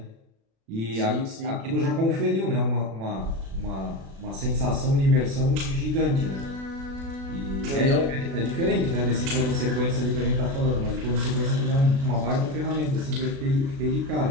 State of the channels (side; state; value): left; late; 36 ms